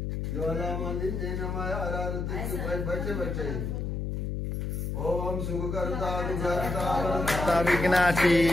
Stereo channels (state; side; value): noise; left; hum, 2 dB below the sound